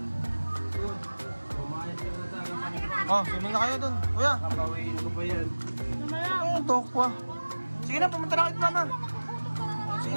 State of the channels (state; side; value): inverted; both; correlation -1.00